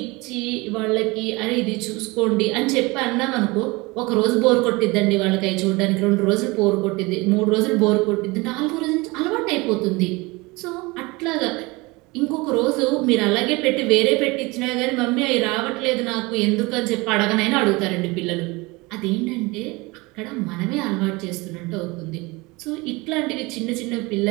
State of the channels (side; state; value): left; quieter; 24.1 dB